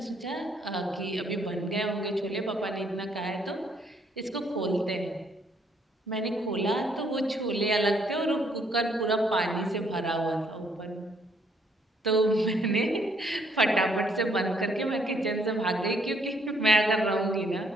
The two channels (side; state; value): both; normal; correlation 0.68